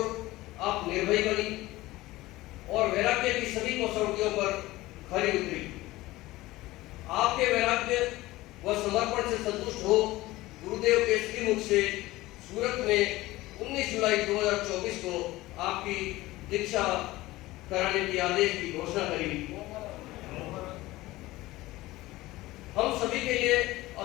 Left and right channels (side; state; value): right; quieter; 18.3 dB